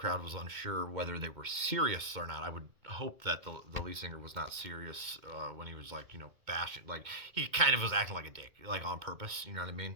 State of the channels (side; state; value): left; late; 2.2 ms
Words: was unsure whether they were serious or not. I would hope that the lead singer was not serious when he was like bashing. Like he kind of was acting like a dick, like on purpose. You know what I